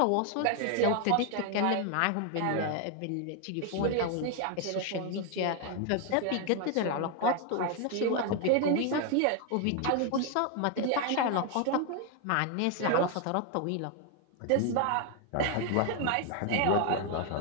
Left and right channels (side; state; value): both; different; correlation 0.00